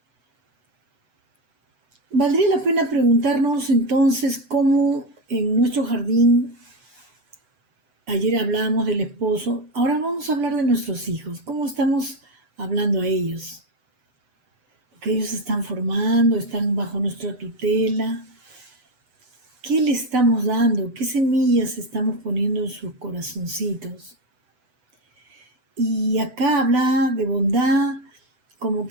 Valdría la pena preguntarnos entonces cómo en nuestro jardín, ayer hablábamos del esposo, ahora vamos a hablar de nuestros hijos, cómo estamos hablando a ellos. Porque ellos se están formando, están bajo nuestra tutela. ¿Qué le estamos dando? ¿Qué semillas estamos poniendo en sus corazoncitos? Y acá habla de bondad, como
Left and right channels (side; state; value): left; late; 8.0 ms